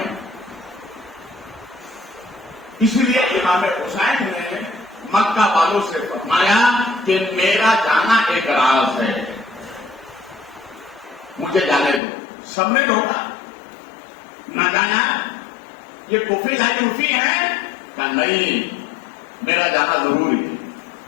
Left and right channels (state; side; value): drops out; right; at 12.0 s